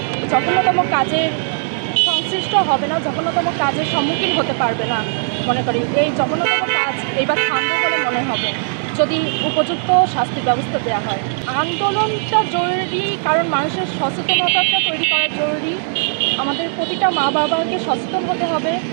জঘন্যতম কাজের সংশ্লিষ্ট হবে না, জঘন্যতম কাজের সম্মুখীন হতে পারবে না। মনে করি এই জঘন্যতম কাজ এইবার থামবে বলে মনে হবে যদি উপযুক্ত শাস্তির ব্যবস্থা দেওয়া হয়। আন্দোলনটা জরুরি, কারণ মানুষের সচেতনতাটা তৈরি করা জরুরি। আমাদের প্রতিটা মা বাবাকে সচেতন হতে হবে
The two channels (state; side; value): silent; left; digital silence